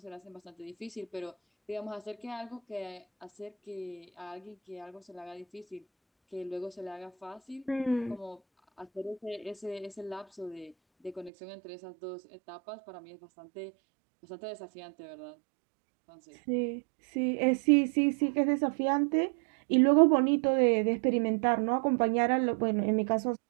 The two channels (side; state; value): left; drops out; at 11.3 s